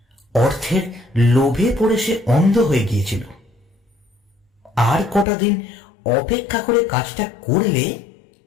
অর্থের লোভে পড়ে সে অন্ধ হয়ে গিয়েছিল। আর কটা দিন অপেক্ষা করে কাজটা করলে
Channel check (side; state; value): right; drops out; at 5.2 s